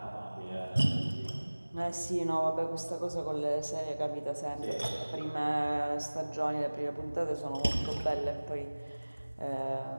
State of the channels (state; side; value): inverted; both; correlation -1.00